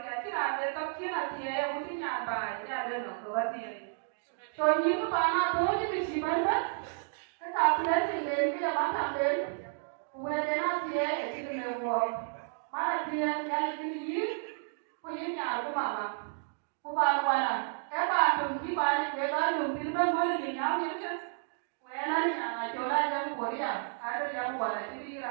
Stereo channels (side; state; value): left; silent; digital silence